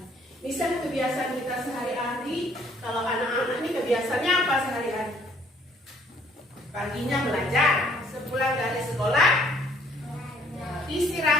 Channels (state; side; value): normal; both; correlation 0.62